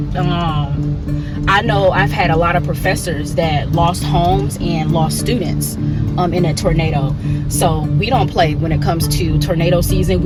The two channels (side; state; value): both; identical; correlation 1.00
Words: I know I've had a lot of professors that lost homes and lost students in a tornado. So we don't play when it comes to tornado season.